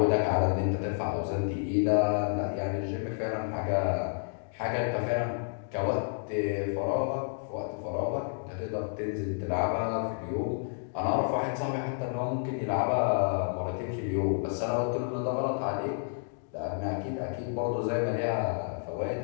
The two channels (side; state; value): right; silent; digital silence